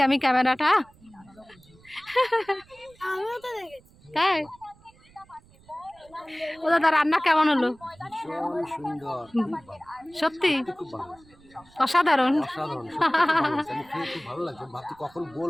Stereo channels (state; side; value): noise; right; rumble, 28 dB below the sound